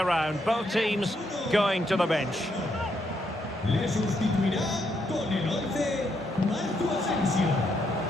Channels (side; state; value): both; normal; correlation 0.77